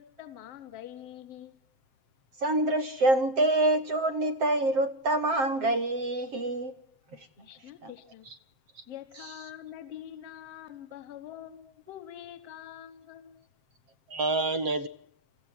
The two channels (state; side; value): late; left; 7.6 ms